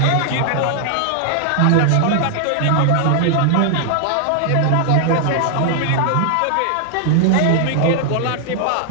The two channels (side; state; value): both; different; correlation 0.00